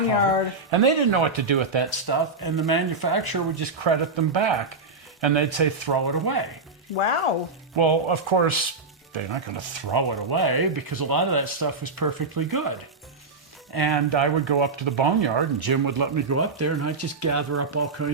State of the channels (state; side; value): quieter; left; 3.8 dB